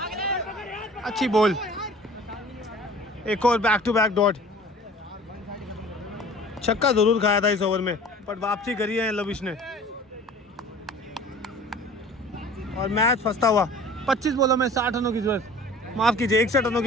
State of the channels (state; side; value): normal; both; correlation 0.45